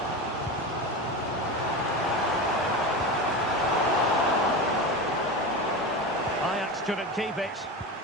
Ajax couldn't keep it.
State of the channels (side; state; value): both; normal; correlation 0.24